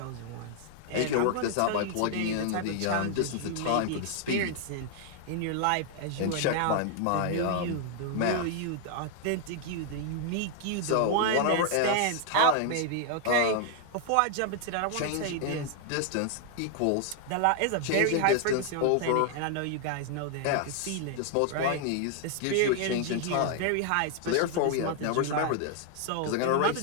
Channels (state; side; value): different; both; correlation 0.00